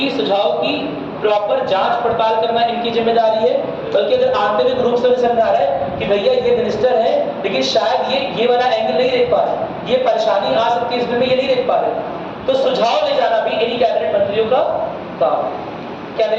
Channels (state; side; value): identical; both; correlation 1.00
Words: सुझाव की प्रॉपर जांच पड़ताल करना इनकी जिम्मेदारी है, बल्कि अगर आंतरिक रूप से समझा रहा है कि भैया ये मिनिस्टर है लेकिन शायद ये वाला एंगल नहीं देख पा रहे, ये परेशानी आ सकती है इसमें, ये नहीं देख पा रहे, तो सुझाव ले जाना भी इन्हीं कैबिनेट मंत्रियों का काम। क्या